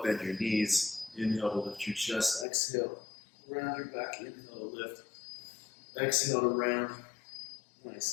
bend your knees. Inhale to lift your chest. Exhale, round your back. Inhale to lift. Exhale to round.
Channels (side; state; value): right; drops out; at 2.5 s